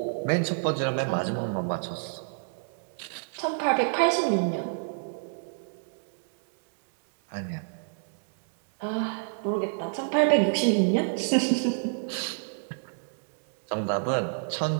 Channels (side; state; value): left; silent; digital silence